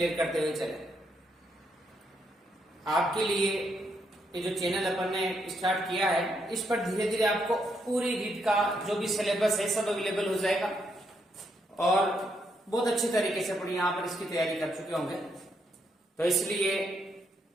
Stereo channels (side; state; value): both; normal; correlation 0.77